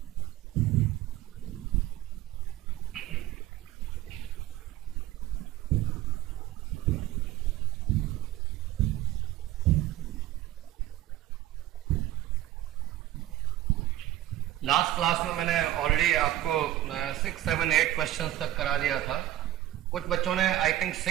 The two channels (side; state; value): left; quieter; 14.1 dB